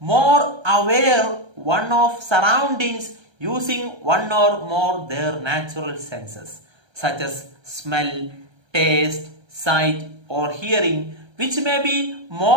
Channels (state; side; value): late; left; 1.3 ms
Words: aware one of surroundings using one or more their natural senses, such as smell, taste, sight, or hearing, which may be